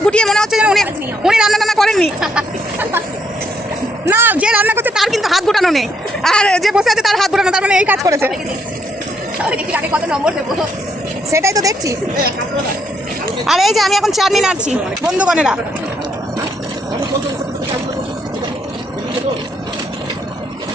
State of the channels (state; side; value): normal; both; correlation 0.73